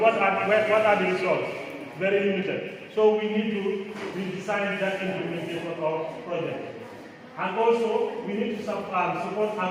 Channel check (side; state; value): both; identical; correlation 1.00